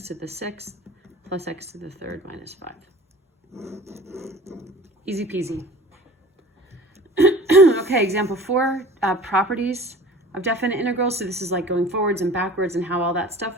to the 6th plus x to the 3rd minus 5. Easy peasy. Okay. Okay, example 4, properties of definite integrals. So this is like going forwards and backwards and how all that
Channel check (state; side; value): normal; both; correlation 0.42